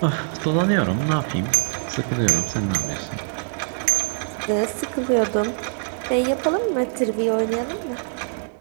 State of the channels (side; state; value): left; silent; digital silence